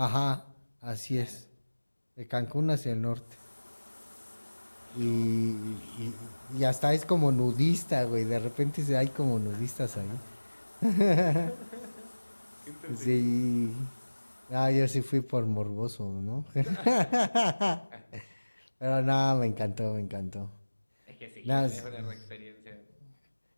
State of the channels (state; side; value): inverted; both; correlation -1.00